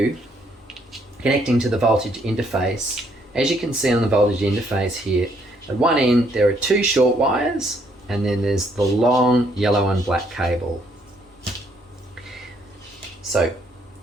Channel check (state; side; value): normal; both; correlation 0.69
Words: connecting to the voltage interface, as you can see on the voltage interface here, at one end there are two short wires and then there's the long yellow and black cable. So